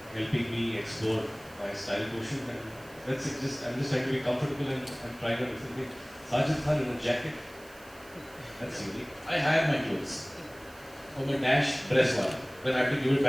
helping me explore my style quotient, and that's it. I'm just trying to be comfortable and trying out different things. Sajid Khan in a jacket, that's unique. I hire my clothes from a dash press wala. Then I have to give it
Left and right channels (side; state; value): right; noise; hiss, 23 dB below the sound